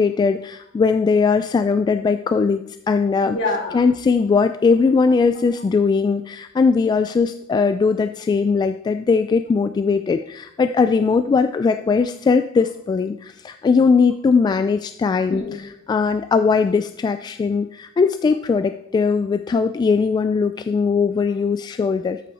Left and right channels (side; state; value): right; quieter; 4.6 dB